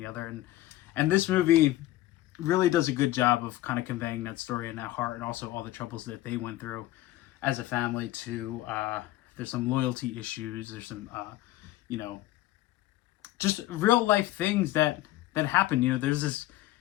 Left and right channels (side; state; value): right; quieter; 15.7 dB